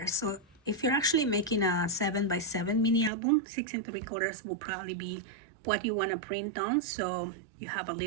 So if you're actually making a 7 by 7 mini album, 6 3/4 will probably be what you want to print on. So you have a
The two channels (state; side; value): drops out; left; at 3.1 s